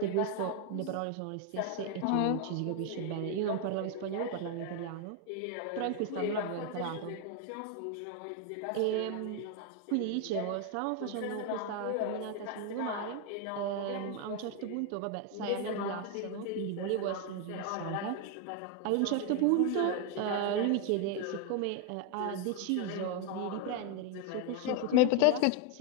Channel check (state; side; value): different; both; correlation 0.01